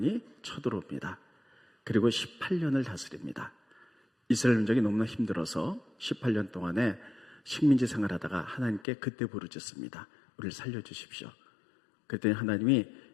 쳐들어옵니다. 그리고 18년을 다스립니다. 이스라엘 민족이 너무나 힘들어서 18년 동안에 식민지 생활하다가 하나님께 그때 부르짖습니다. 우리를 살려주십시오. 그때 하나님이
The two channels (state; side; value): drops out; right; at 8.8 s